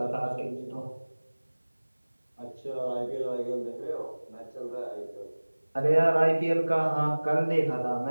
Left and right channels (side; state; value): both; inverted; correlation -1.00